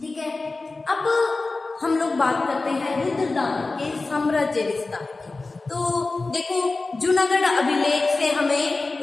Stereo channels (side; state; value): right; quieter; 3.5 dB